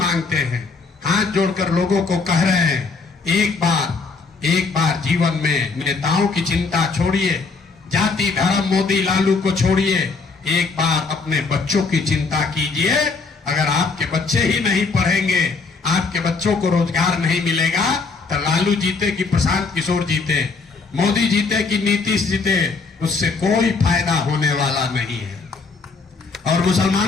हैं, हाथ जोड़कर लोगों को कह रहे हैं, एक बार जीवन में नेताओं की चिंता छोड़िए, जाति धर्म मोदी लालू को छोड़िए, एक बार अपने बच्चों की चिंता कीजिए। अगर आपके बच्चे ही नहीं पढ़ेंगे, आपके बच्चों को रोजगार नहीं मिलेगा, तो लालू जीते कि प्रशांत किशोर जीते, मोदी जीते कि नीतीश जीते, उससे कोई फायदा होने वाला नहीं है। और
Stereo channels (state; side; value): quieter; right; 4.4 dB